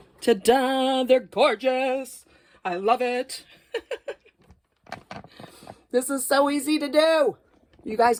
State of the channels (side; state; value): both; identical; correlation 1.00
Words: Ta-da! They're gorgeous. I love it. This is so easy to do. You guys